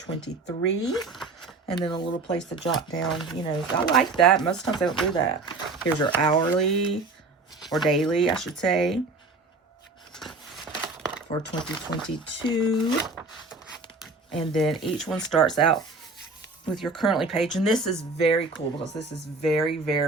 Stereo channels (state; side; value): quieter; left; 3.6 dB